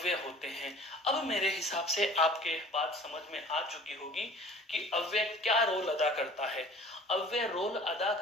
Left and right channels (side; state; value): both; normal; correlation 0.48